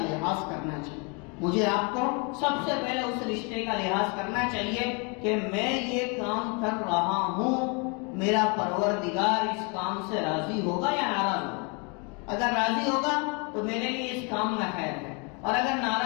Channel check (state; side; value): quieter; right; 33.0 dB